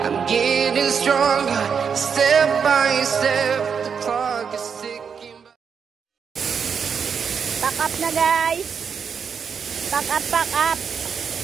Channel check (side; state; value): left; quieter; 6.6 dB